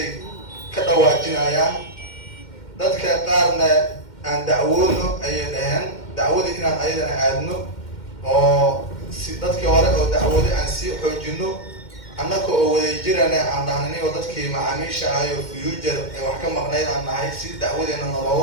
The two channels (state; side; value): late; right; 2.1 ms